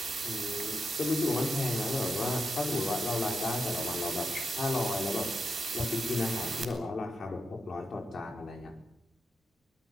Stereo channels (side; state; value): both; normal; correlation 0.86